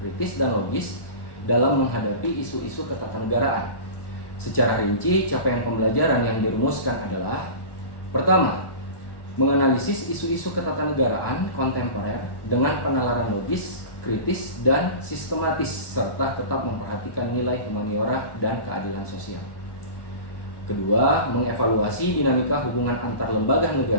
dan logis dalam menghadapi isu-isu ketatanegaraan. Secara rinci, capaian pembelajaran yang dirumuskan adalah: pertama, menganalisis isu-isu ketatanegaraan kontemporer dengan penalaran logis, kritis, dan sistematis, serta tetap memperhatikan nilai humaniora dan keadilan sosial. Kedua, mengevaluasi dinamika hubungan antar lembaga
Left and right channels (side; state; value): right; late; 1.2 ms